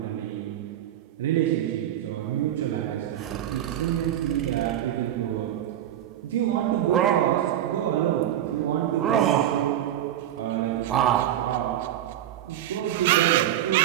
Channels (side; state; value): left; quieter; 12.0 dB